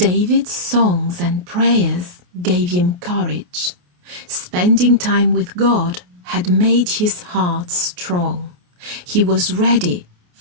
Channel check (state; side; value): late; left; 28 ms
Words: songs and prayers gave him courage. Spending time with God had made his heart strong. He was ready